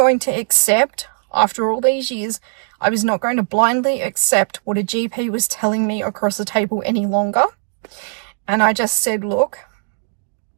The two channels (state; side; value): silent; left; digital silence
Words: to accept, after all these years, I was not going to blindly accept what a GP was telling me across the table any longer. And I just said, look,